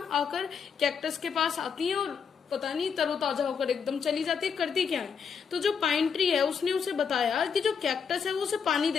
आकर कैक्टस के पास आती हैं और पता नहीं तरोताजा होकर एकदम चली जाती है, करती क्या है। तो जो पाइन ट्री है उसने उसे बताया कि जो कैक्टस है वो उसे पानी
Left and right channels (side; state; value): right; quieter; 6.4 dB